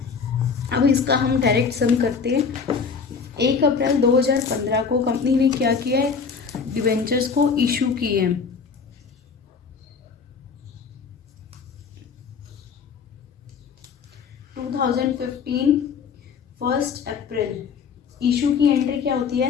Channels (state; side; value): quieter; right; 5.7 dB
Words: अब इसका हम डायरेक्ट सम करते हैं। 1 अप्रैल 2015 को कंपनी ने क्या किया है, डिवेंचर्स को इशू किए हैं। फर्स्ट अप्रैल इशू की एंट्री क्या होती है,